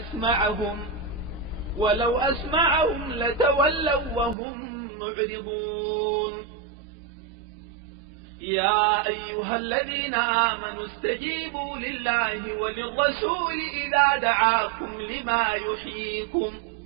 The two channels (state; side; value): drops out; left; at 4.4 s